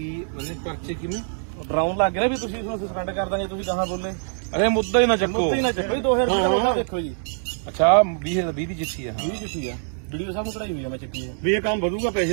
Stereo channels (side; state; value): left; silent; digital silence